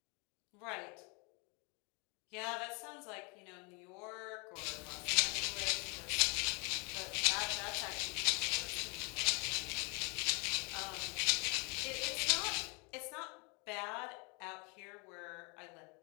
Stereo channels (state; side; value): quieter; right; 32.2 dB